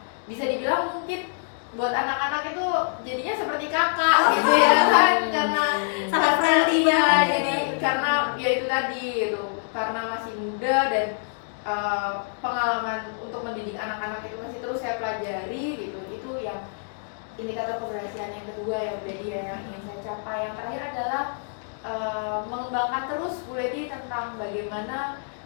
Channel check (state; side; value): silent; right; digital silence